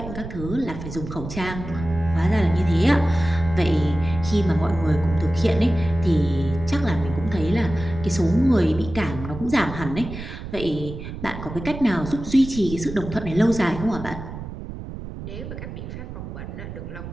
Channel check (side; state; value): right; noise; rumble, 9 dB below the sound